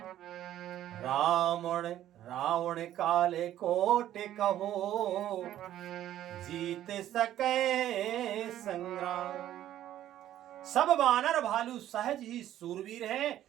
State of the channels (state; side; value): quieter; left; 12.4 dB